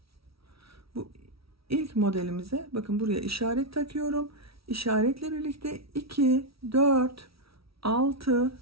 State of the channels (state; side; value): late; left; 0.76 ms